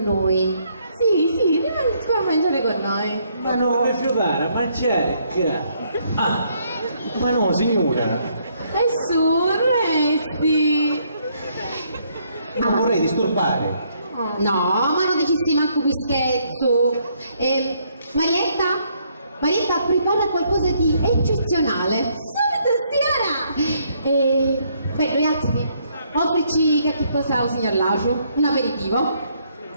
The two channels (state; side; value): inverted; both; correlation -0.70